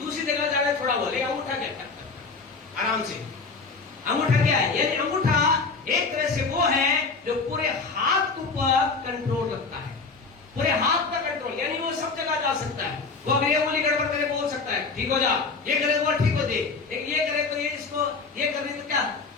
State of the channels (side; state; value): right; quieter; 4.3 dB